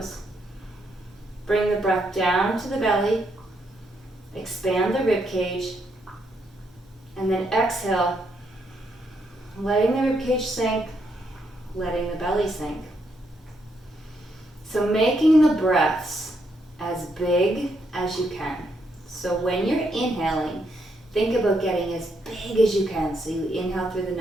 Bring the breath down to the belly. Expand the rib cage. And then exhale, letting the rib cage sink, letting the belly sink. So making the breaths as big as you can. So when you're inhaling, think about getting as big as you can. So you inhale through the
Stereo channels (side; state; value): both; normal; correlation 0.77